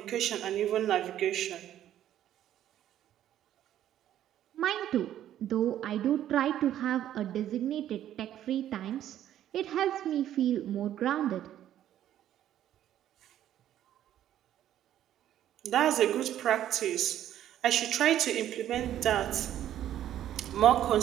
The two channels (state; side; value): quieter; left; 11.6 dB